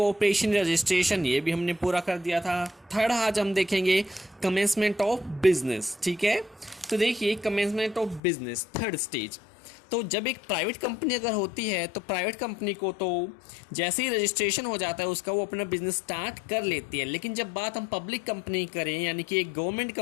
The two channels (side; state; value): right; drops out; at 8.2 s